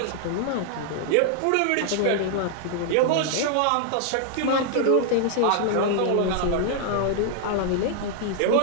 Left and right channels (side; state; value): both; different; correlation 0.00